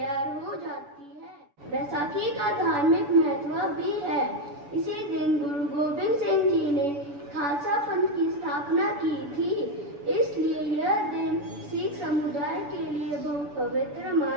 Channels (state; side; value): late; left; 7.0 ms